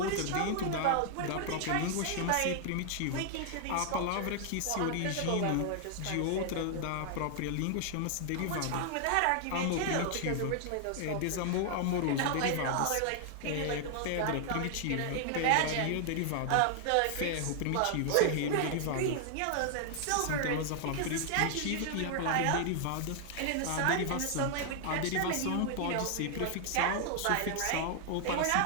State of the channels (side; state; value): both; different; correlation 0.00